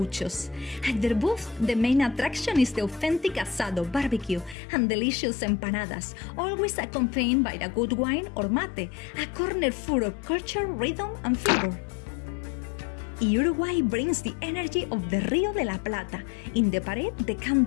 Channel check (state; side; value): drops out; right; at 4.5 s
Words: At their booth, the main attraction is the authentic asado, barbecue, and delicious empanadas, always accompanied by a good wine or mate, a corner full of culture, rhythm, and flavor. Uruguay brings the energy of the Rio de la Plata. In the parade, the